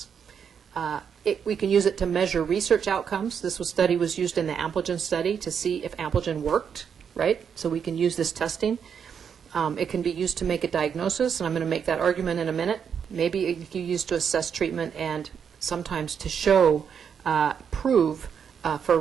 We can use it to measure research outcomes. This study was used in the Ampligen study to see if Ampligen worked, right? So we can use this testing. It can be used to make a diagnosis, and I'm going to make that argument in a minute. Maybe it can be used to assess treatment and sometimes to show, prove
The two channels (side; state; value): left; quieter; 7.3 dB